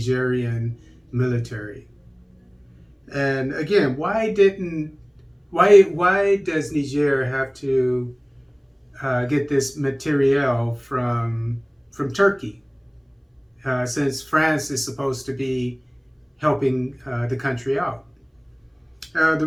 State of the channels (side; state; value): both; identical; correlation 1.00